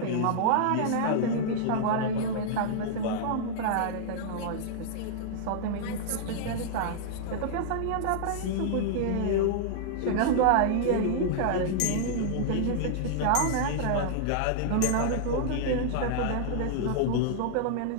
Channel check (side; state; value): both; different; correlation -0.01